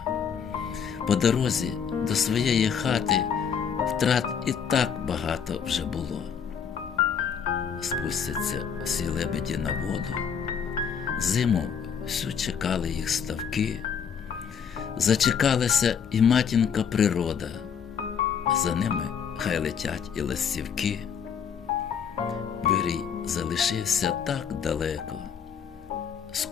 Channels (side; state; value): right; quieter; 7.2 dB